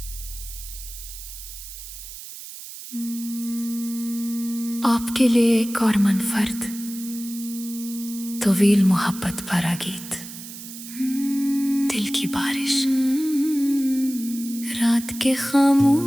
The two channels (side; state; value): right; noise; hiss, 12 dB below the sound